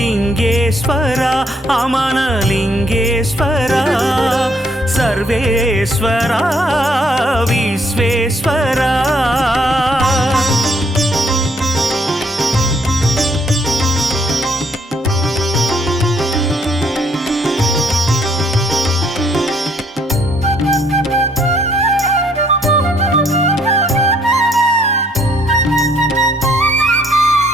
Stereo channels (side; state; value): both; normal; correlation 0.67